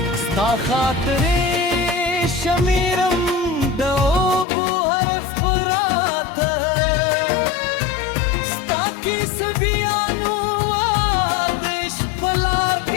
sta khatre shamiram dobu harf parat sta ki sabianu wadish palar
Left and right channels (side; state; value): right; drops out; at 4.5 s